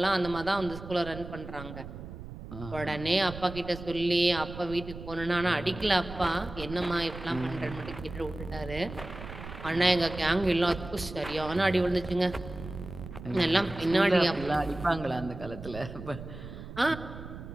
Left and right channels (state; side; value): noise; right; rumble, 12 dB below the sound